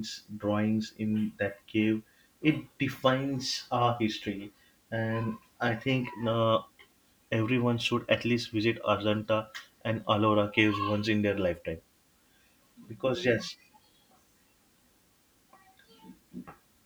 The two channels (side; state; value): both; identical; correlation 1.00